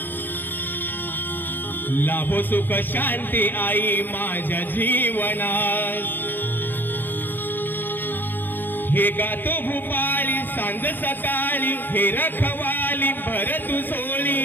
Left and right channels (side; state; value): right; late; 0.092 ms